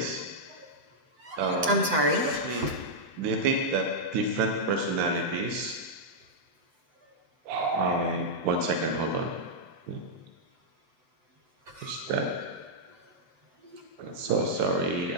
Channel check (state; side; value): late; left; 7.9 ms